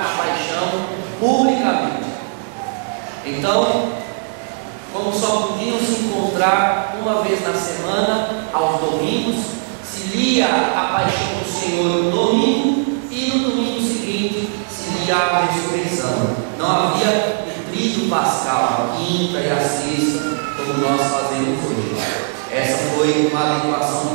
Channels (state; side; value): silent; left; digital silence